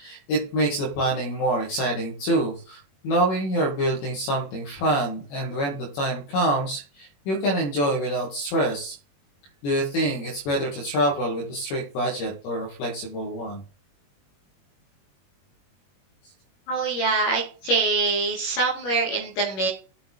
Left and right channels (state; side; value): late; right; 21 ms